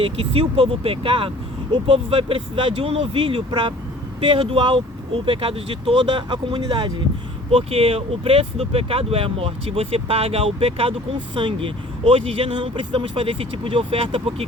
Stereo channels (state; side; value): normal; both; correlation 0.49